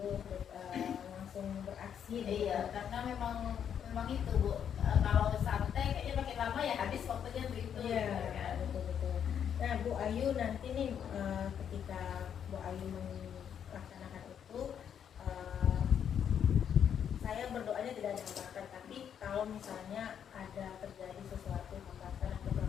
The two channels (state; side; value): quieter; right; 8.5 dB